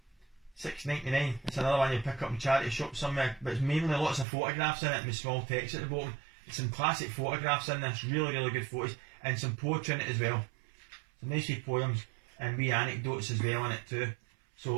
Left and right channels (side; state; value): left; drops out; at 4.2 s